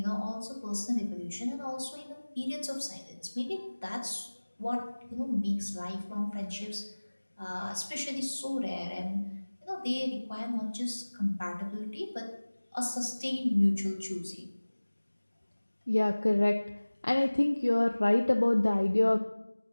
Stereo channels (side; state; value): both; inverted; correlation -1.00